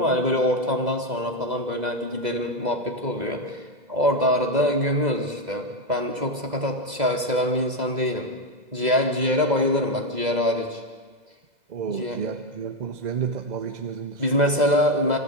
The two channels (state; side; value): late; left; 2.0 ms